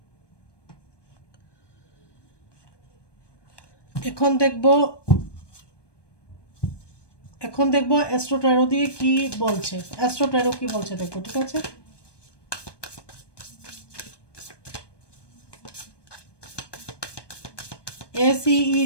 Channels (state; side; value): late; right; 1.2 ms